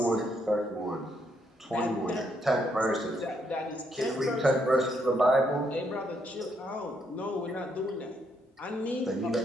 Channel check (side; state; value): both; normal; correlation 0.74